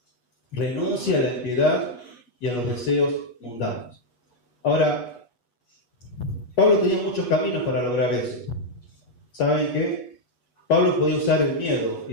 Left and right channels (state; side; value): late; right; 8.3 ms